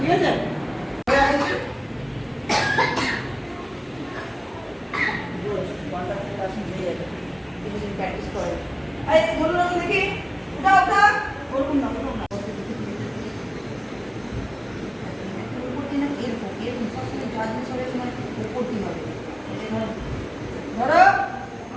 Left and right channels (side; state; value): both; identical; correlation 1.00